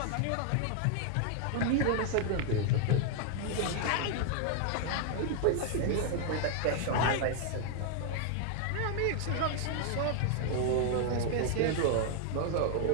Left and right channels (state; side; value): different; both; correlation 0.00